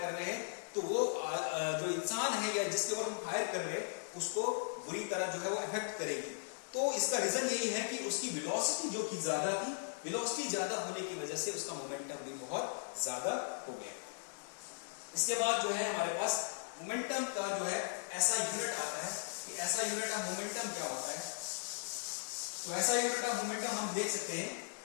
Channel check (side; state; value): right; silent; digital silence